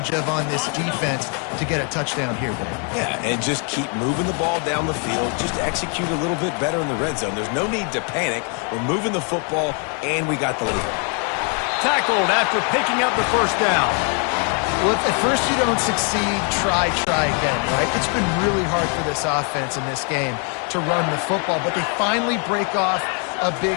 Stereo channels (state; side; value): quieter; right; 39.1 dB